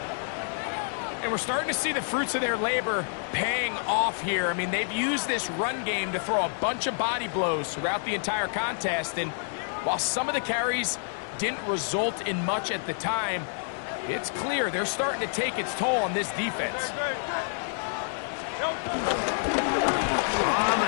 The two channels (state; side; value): silent; right; digital silence